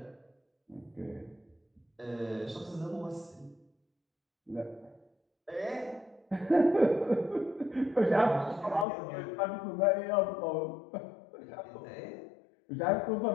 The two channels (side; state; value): right; drops out; at 8.8 s